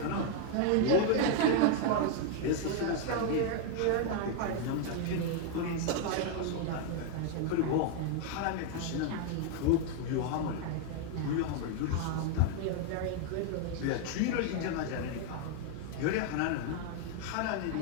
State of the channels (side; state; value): both; different; correlation 0.00